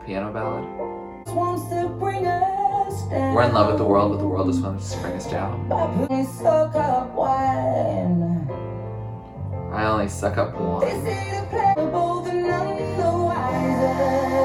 piano ballad? We're in love with the world, but the world just wants to bring us down. I only suck up wine.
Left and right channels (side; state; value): both; identical; correlation 1.00